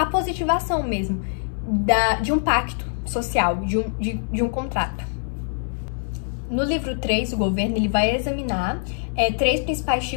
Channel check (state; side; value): silent; right; digital silence